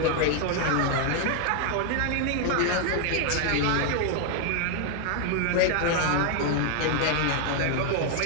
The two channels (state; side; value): different; both; correlation 0.00